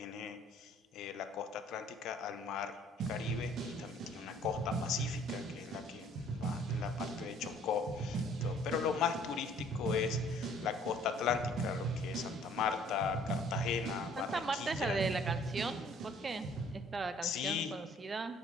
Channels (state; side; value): normal; both; correlation 0.57